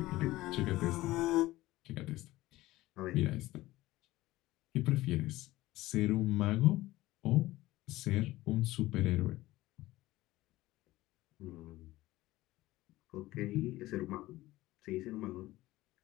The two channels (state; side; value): quieter; right; 17.5 dB